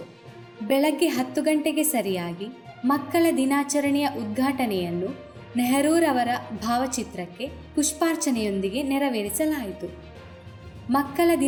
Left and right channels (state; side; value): identical; both; correlation 1.00